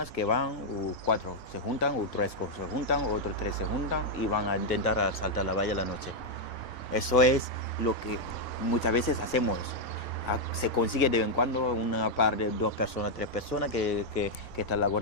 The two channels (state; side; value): normal; both; correlation -0.01